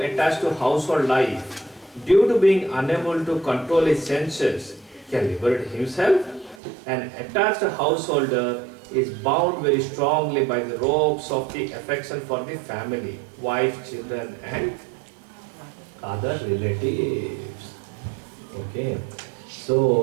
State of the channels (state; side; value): drops out; left; at 6.6 s